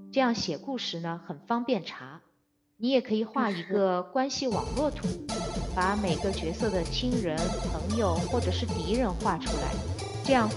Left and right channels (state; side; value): identical; both; correlation 1.00